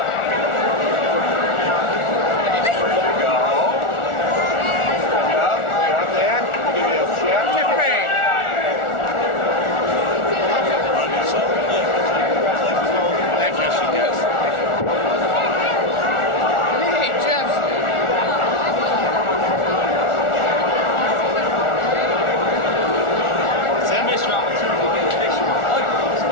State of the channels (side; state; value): right; late; 1.4 ms